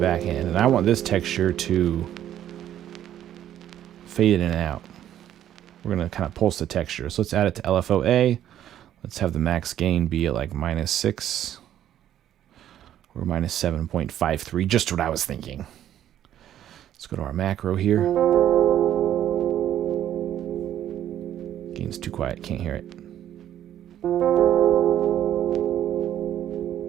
end. And I want this texture to fade in and out. We're going to kind of pulse the texture. So let's add it to LFO-A. Let's have the max gain be at like -6 or -7.53. Just what I was thinking. Let's go to our macro here. Gain's too quiet. Can't hear it.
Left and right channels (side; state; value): left; quieter; 11.3 dB